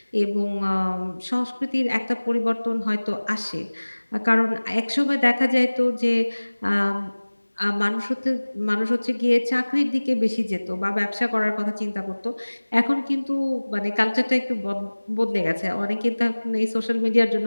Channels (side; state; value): both; inverted; correlation -1.00